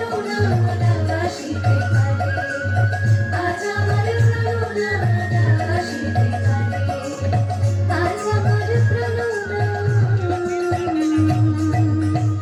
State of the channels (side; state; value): both; identical; correlation 1.00